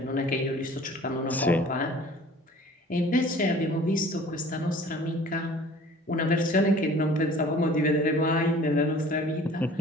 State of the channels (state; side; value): normal; both; correlation 0.48